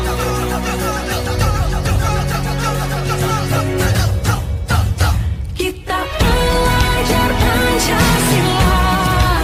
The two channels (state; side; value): identical; both; correlation 1.00